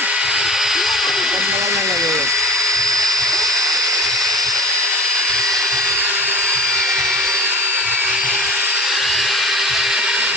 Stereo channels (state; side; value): normal; both; correlation 0.35